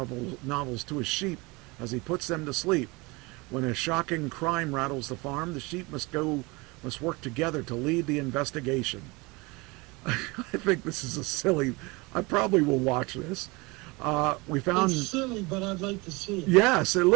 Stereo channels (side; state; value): left; quieter; 25.3 dB